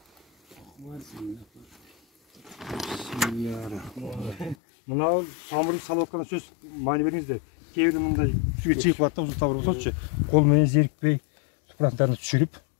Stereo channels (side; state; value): right; drops out; at 4.5 s